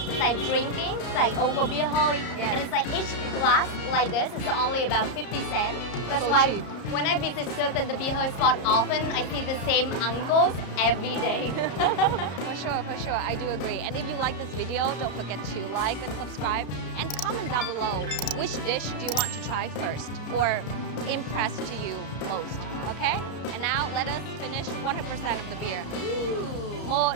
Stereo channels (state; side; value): late; right; 33 ms